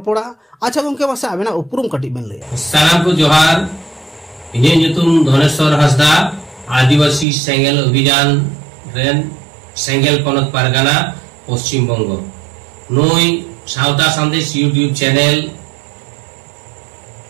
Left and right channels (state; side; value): drops out; left; at 7.2 s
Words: अच्छा गोंके बस आबेना उपरुम कटी बेन लैया सनाम को जोहार इने ᱧᱩᱛᱩᱢ धनेश्वर हंसदा आदिवासी सेंगेल अभियान रेन सेंगेल पनत पारगाना पश्चिम बंग नुई सावता संदेश यूट्यूब चैनल